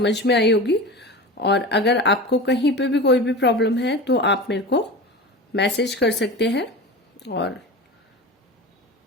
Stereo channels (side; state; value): both; normal; correlation 0.31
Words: में आई होगी, और अगर आपको कहीं पे भी कोई भी प्रॉब्लम है तो आप मेरे को मैसेज कर सकते हैं, और